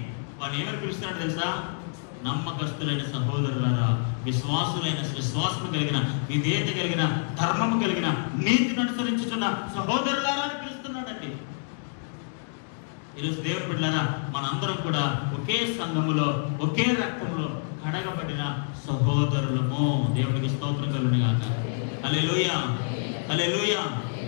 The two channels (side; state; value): right; silent; digital silence